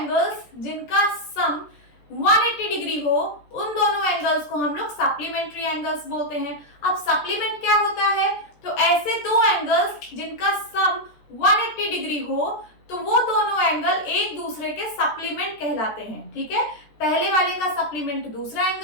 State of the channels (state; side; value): late; right; 14 ms